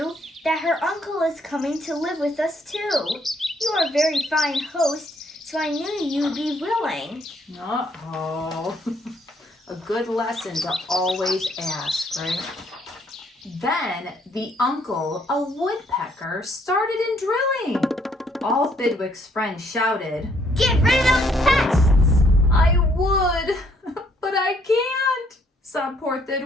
that her uncle is coming to live with us too. You are a very fine host, so I knew you'd be willing." Uh-oh. A good lesson to always ask, right? Then the uncle, a woodpecker, started in drilling. All Thidwick's friends shouted, "Get rid of those pests!" "I would, but I can't," sobbed poor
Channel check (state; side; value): normal; both; correlation 0.67